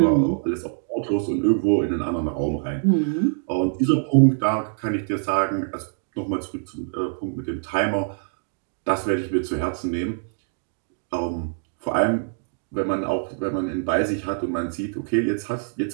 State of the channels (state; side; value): silent; left; digital silence